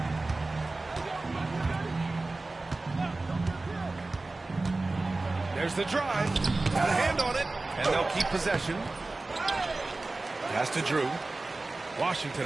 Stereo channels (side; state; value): left; quieter; 3.2 dB